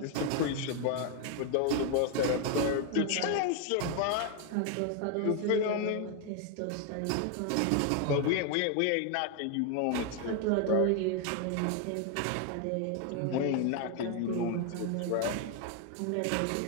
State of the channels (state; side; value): different; both; correlation 0.00